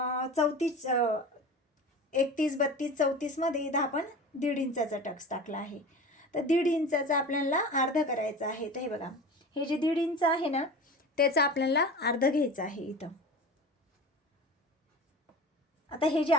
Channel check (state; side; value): normal; both; correlation 0.34